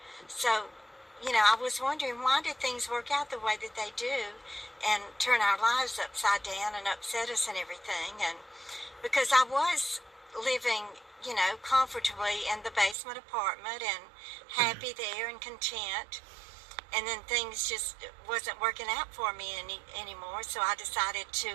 So, I was wondering, why did things work out the way that they do and turn our lives upside down and upset us and everything? And because I was living, comfortably in the basement apartment and happy there and content, and then things just wasn't working out for me anymore. So I decided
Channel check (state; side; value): drops out; left; at 13.0 s